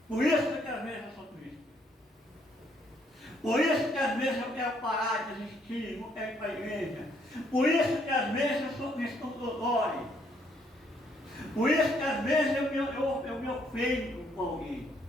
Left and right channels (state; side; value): normal; both; correlation 0.69